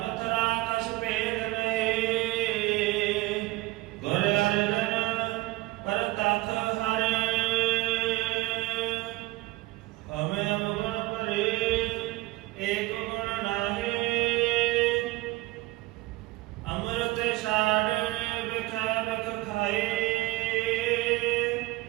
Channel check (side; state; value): left; quieter; 19.0 dB